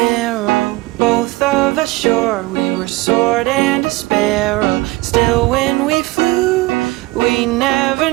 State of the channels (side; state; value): left; quieter; 20.2 dB